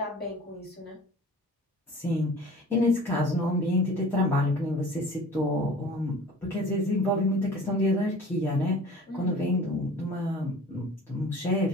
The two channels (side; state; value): both; normal; correlation 0.44